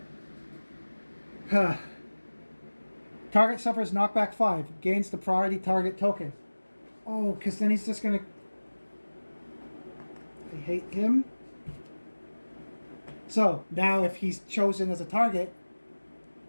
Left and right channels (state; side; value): inverted; both; correlation -1.00